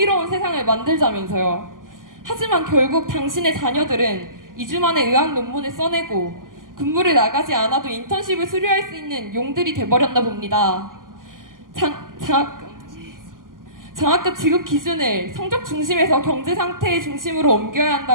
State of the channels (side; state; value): left; late; 0.90 ms